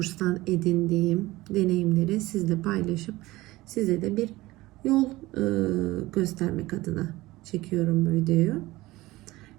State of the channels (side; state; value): left; quieter; 19.0 dB